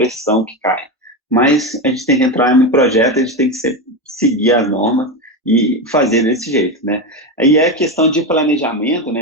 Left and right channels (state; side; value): normal; both; correlation 0.15